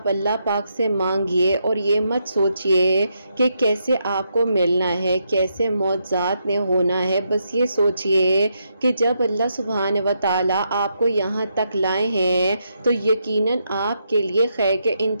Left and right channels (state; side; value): inverted; both; correlation -0.80